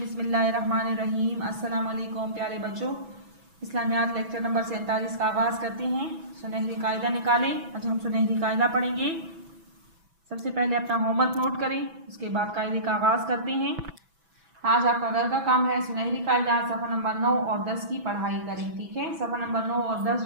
अस्सलाम वालेकुम प्यारे बच्चों, इस्लामियात लेक्चर नंबर 47 का आगाज़ करते हैं। सुनहरी कायदा निकालें। आज हम सुनहरी कायदा पढ़ेंगे। सबसे पहले अपना होमवर्क नोट करें, उसके बाद कायदे का आगाज़ करते हैं। आज आपका घर का काम है सुनहरी कायदा सफ़ा नंबर 9 और 10 की पढ़ाई करें। ठीक है, सफ़ा नंबर 9 और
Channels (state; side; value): late; left; 6.1 ms